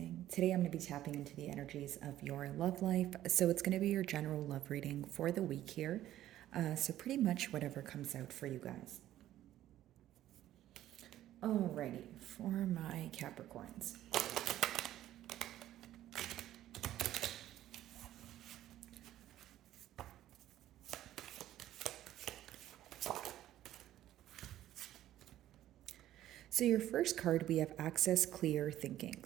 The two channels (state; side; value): quieter; left; 13.2 dB